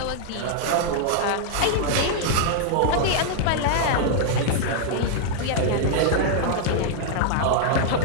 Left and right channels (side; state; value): both; different; correlation -0.01